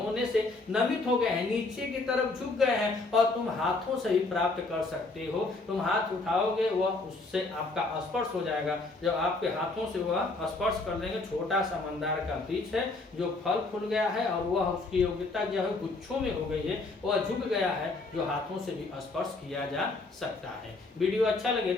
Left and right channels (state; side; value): quieter; right; 3.4 dB